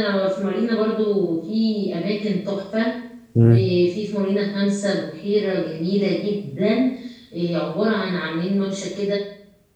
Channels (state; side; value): identical; both; correlation 1.00